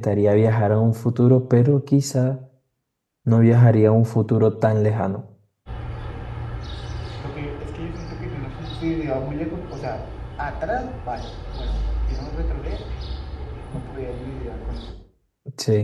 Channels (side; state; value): both; identical; correlation 1.00